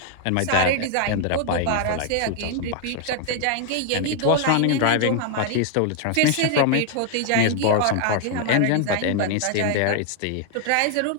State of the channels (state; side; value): different; both; correlation 0.00